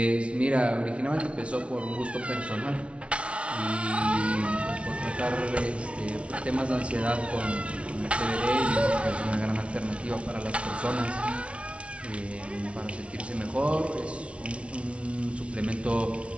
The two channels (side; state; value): left; late; 0.061 ms